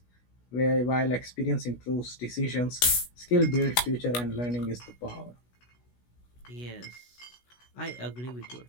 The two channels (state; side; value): late; right; 16 ms